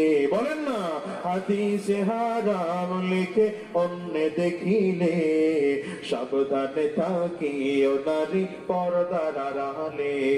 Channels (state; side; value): identical; both; correlation 1.00